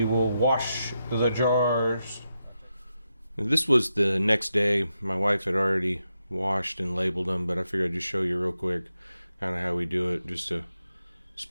will wash the jars. This was the next day. My wife had already washed and labeled them, but I figured I'd just show you real quick kind of how we do it. Just a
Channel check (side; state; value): both; inverted; correlation -0.87